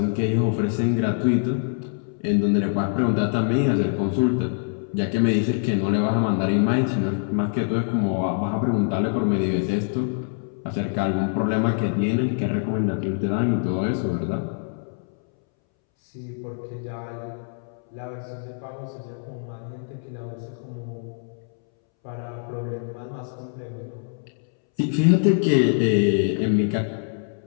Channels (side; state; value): right; silent; 62 dB below the other